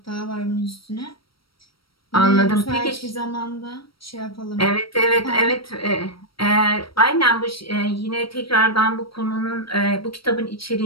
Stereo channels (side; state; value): right; late; 0.75 ms